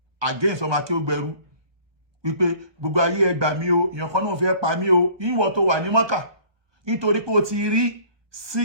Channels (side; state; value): left; late; 1.2 ms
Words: against ọmọ Akeugberu wípé gbogbo ayé ẹ gbà mí o èèyàn kan náà fẹ́ pa mí o ìwọ tó wà ní Mọ́kà nítorí pé o ti rí